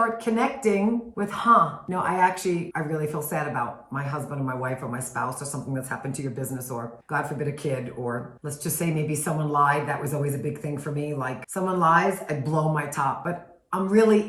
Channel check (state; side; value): identical; both; correlation 1.00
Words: connecting with, I really feel sad about my husband or my wife or my spouse, or something that's happened to your business, or God forbid a kid, or let's just say maybe someone lied. That was always a big thing for me. Like, someone lies, I blow my top. But I'm